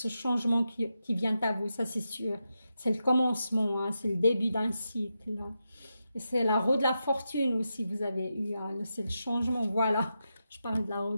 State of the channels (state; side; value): inverted; both; correlation -0.88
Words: changement qui vient à vous, ça c'est sûr. C'est le commencement, hein, c'est le début d'un cycle. Hein. Et c'est la roue de la fortune aussi, vous avez eu, hein, c'est le changement, voilà. Je parle de la roue